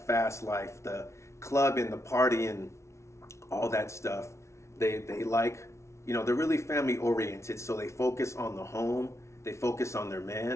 fast life, the club and the party and all that stuff. They like, they're really family oriented, so they focus on the home, they focus on their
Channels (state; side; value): late; right; 0.13 ms